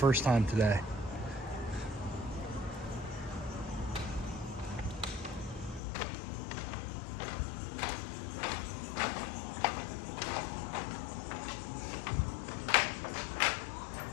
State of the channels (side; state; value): right; drops out; at 5.8 s